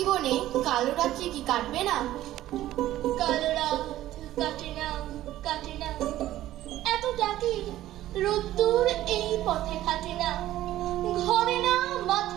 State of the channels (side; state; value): left; quieter; 14.2 dB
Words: কালো রাত্রি কি কাটবে না? কালো রাত কাটে না, কাটে না, এত ডাকি রোদ্দুর এই পথে কাটে না, ঘরে না,